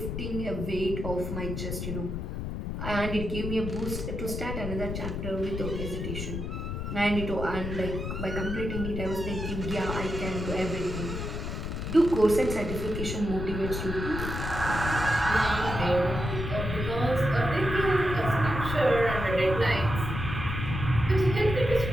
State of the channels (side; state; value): left; noise; rumble, 4 dB below the sound